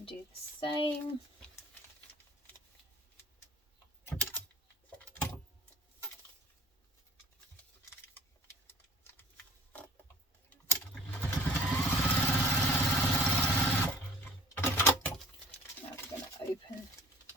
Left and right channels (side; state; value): both; normal; correlation 0.49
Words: do the same. Open,